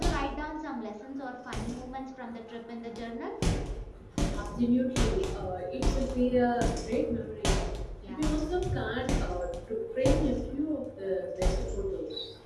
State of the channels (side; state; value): both; identical; correlation 1.00